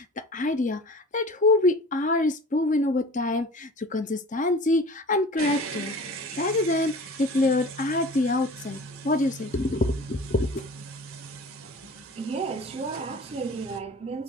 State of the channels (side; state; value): both; normal; correlation 0.41